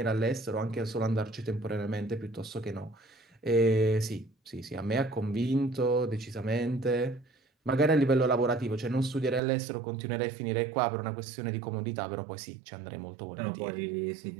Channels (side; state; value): left; drops out; at 9.4 s